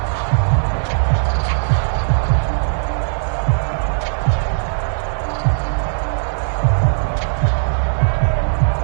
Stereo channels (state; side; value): silent; left; 63 dB below the other